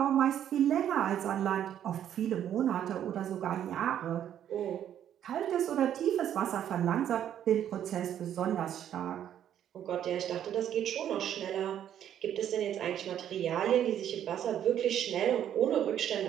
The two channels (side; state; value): left; quieter; 10.3 dB